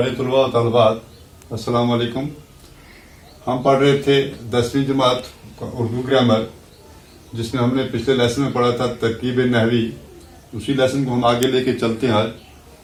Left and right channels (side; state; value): both; identical; correlation 1.00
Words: तलबा और तलबात, अस्सलाम वालेकुम। हम पढ़ रहे थे 10वीं जमात उर्दू ग्रामर, जिसमें हमने पिछले लेसन में पढ़ा था तरकीब नहवी। उसी लेसन को हम आगे लेके चलते हैं आज।